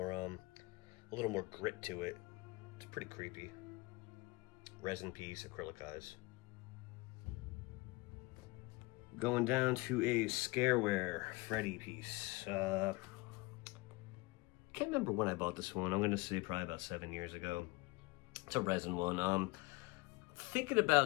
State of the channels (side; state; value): right; quieter; 24.2 dB